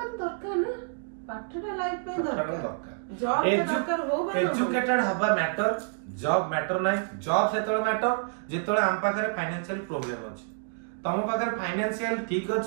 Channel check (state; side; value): silent; left; digital silence